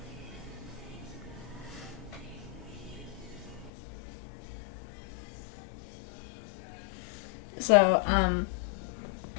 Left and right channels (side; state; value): right; drops out; at 3.7 s